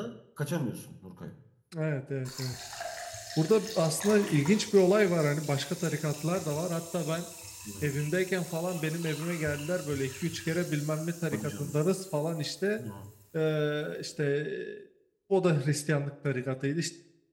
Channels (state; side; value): identical; both; correlation 1.00